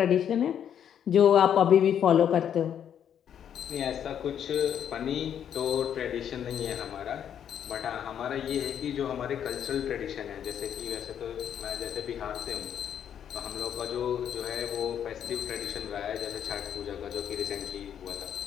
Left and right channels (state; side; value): quieter; right; 9.1 dB